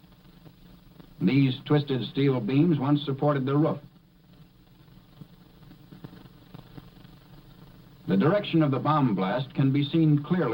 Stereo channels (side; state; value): both; identical; correlation 1.00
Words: These twisted steel beams once supported the roof. The direction of the bomb blast can be seen